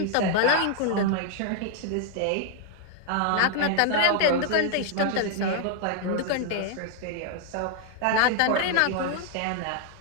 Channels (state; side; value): different; both; correlation 0.00